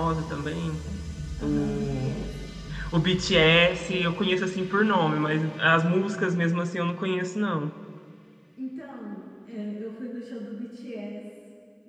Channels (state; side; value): identical; both; correlation 1.00